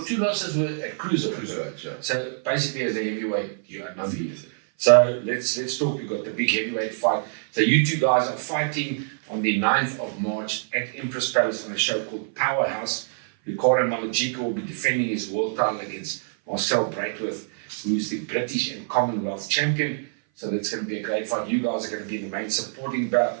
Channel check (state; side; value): silent; left; 57 dB below the other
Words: 2 losses were at cruiserweight. Yeah. So basically, as a heavyweight, you are undefeated. So let's talk. We've got the big heavyweight fight. So you two guys are fighting on the 9th of March at Empress Palace on a show called Powerhouse. Ricardo Malajika will be defending his world title against Marcel Braithwaite, who's the British and Commonwealth champion. So that's going to be a great fight. You guys are going to be the main supporting bout